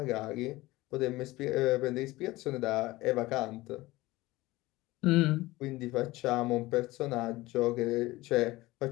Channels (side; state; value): right; quieter; 19.3 dB